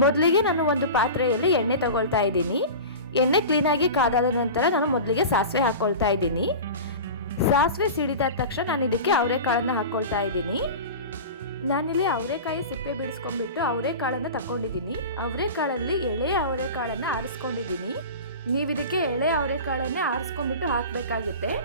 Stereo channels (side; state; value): both; inverted; correlation -0.31